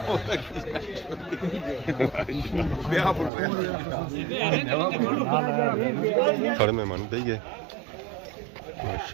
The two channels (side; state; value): left; drops out; at 3.3 s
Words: सारे मेहमान दे गए